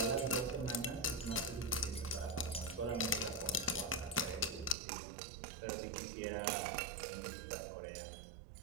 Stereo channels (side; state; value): left; drops out; at 4.8 s